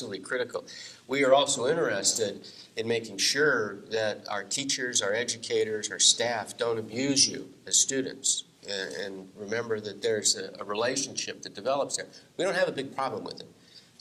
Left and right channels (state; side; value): identical; both; correlation 1.00